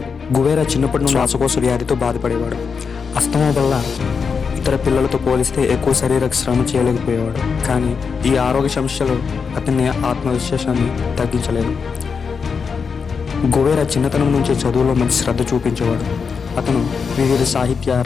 గువెరా చిన్నప్పటి నుండి శ్వాసకోశ వ్యాధితో బాధపడేవాడు. అస్తమా వల్ల ఇతర పిల్లలతో పోలిస్తే ఎక్కువ శారీరక శ్రమ చేయలేకపోయేవాడు. కానీ ఈ ఆరోగ్య సమస్యలు అతని ఆత్మవిశ్వాసాన్ని తగ్గించలేదు. గువెరా చిన్నతనం నుంచే చదువులో మంచి శ్రద్ధ చూపించేవాడు. అతను వివిధ సాహిత్య,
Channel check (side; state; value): right; quieter; 5.7 dB